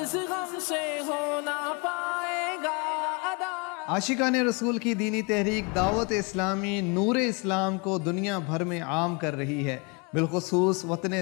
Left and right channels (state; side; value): quieter; right; 31.1 dB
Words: غم سے ہونا پائے گا ادا۔ عاشقان رسول کی دینی تحریک دعوت اسلامی نور اسلام کو دنیا بھر میں عام کر رہی ہے۔ بالخصوص وطن